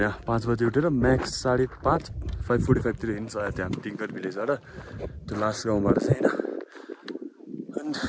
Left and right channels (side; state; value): both; identical; correlation 1.00